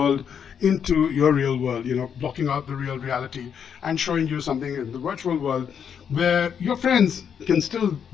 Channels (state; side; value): quieter; right; 7.7 dB